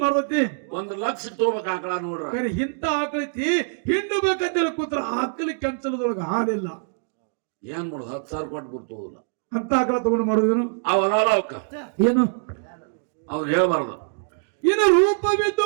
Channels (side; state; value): left; silent; digital silence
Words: ಮಾಡ್ತೈತಿ? 1,00,000 ತಗೋಬೇಕ ಆಕಳ ನೋಡ್ರ. ಕರೆ ಇಂತ ಆಕಳೈತಿ ಹಿಂಡಬೇಕಂತೇಳಿ ಕೂತ್ರ ಆಕಳಿ ಕೆಂಚಲದೊಳಗ ಹಾಲಿಲ್ಲ. ಏನ್ ಮಾಡುದು 10,000 ಕೊಟ್ಟು ಬರ್ತೋದಿಲ್ಲ ಅಂತ ಆಕಳ ತಗೊಂಡು ಮಾಡುದೇನು? ಅವರಲ್ಲ ಅವಕ್ಕ ಏನು ಅವ್ರು ಹೇಳ್ಬಾರ್ದು. ಇನ್ನು